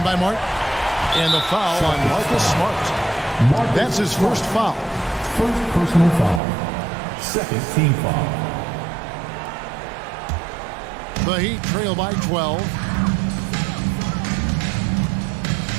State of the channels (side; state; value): left; drops out; at 6.4 s